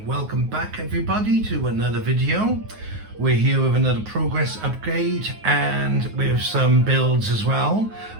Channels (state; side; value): late; left; 9.4 ms